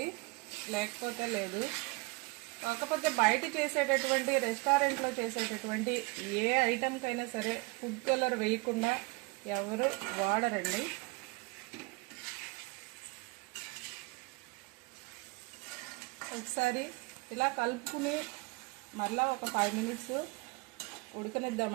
లేకపోతే లేదు. కాకపోతే బయట చేసేటటువంటి రెస్టారెంట్లో చేసేటటువంటి ఏ ఐటెంకైనా సరే ఫుడ్ కలర్ వేయకుండా ఎవరు వాడరండి. ఒకసారి ఇలా కలుపుకుని మరలా ఒక 5 మినిట్స్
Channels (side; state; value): left; quieter; 26.2 dB